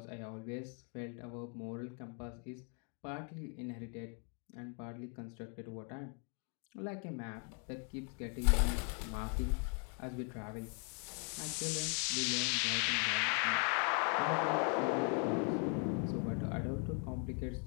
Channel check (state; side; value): quieter; right; 39.7 dB